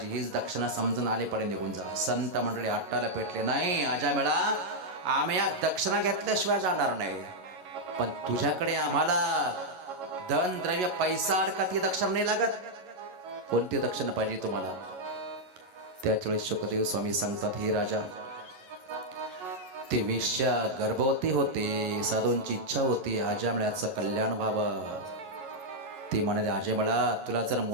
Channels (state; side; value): late; left; 11 ms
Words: हीच दक्षिणा समजून आले पडे निघून जा. संत मंडळी हट्टाला पेटले, नाही अजय मेळा, आम्ही या दक्षिणा घेतल्याशिवाय जाणार नाही, पण तुझ्याकडे आम्हाला धन द्रव्य पैसा अडका ती दक्षिणा नाही लागत. कोणती दक्षिणा पाहिजे तुम्हाला? त्यावेळेस शुकदेव स्वामी सांगतात, ही राजा, ती वेश्या गर्भवती होती, साधूंची इच्छा होती आजमळ्याचं कल्याण व्हावं. ती म्हणाली, आजमळा, तुला जर